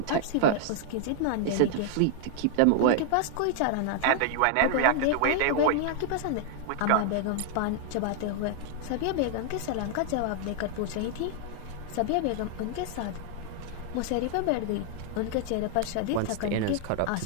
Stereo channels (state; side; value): different; both; correlation 0.00